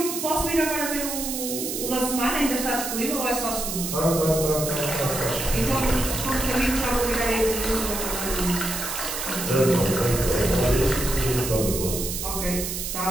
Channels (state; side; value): noise; right; hiss, 4 dB below the sound